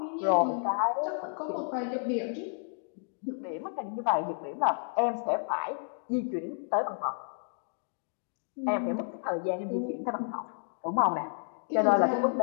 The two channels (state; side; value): silent; right; digital silence